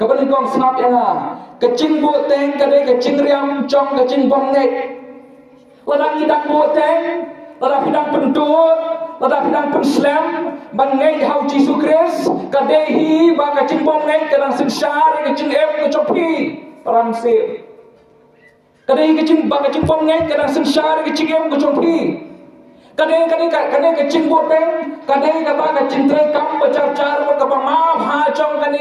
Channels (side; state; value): both; identical; correlation 1.00